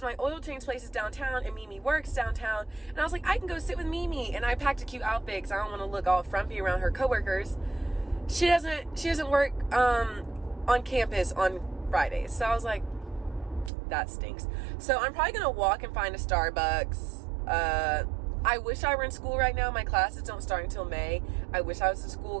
my oil change place is downtown and Mimi works downtown. And I was like, I can go sit with Mimi. And I packed a cute outfit because I don't want to look all frumpy around her coworkers. She doesn't work on campus on Fridays. So I was like, that stinks. So I'm probably going to walk and find a Starbucks. I wish I were in school right now. My classes don't start until May. I wish I was in school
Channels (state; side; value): drops out; left; at 13.7 s